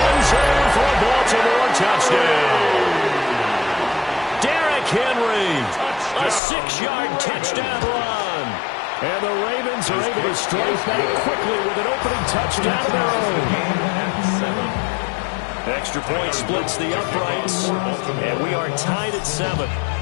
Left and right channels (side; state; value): right; drops out; at 6.4 s